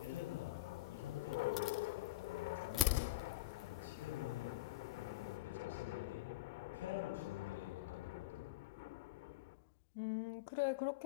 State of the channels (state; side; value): quieter; right; 17.0 dB